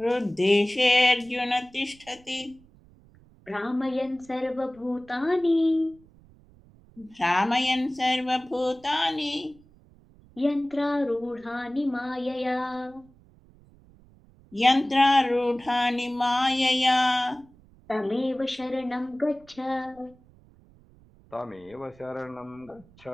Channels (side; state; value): right; noise; rumble, 27 dB below the sound